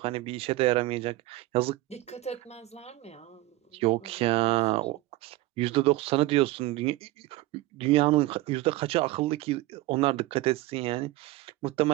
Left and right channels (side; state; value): left; quieter; 18.0 dB